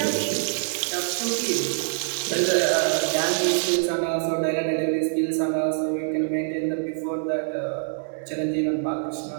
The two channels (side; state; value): left; silent; digital silence